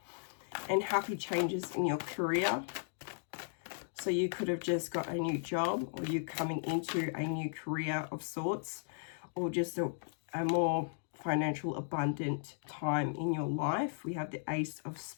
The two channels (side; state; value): right; silent; digital silence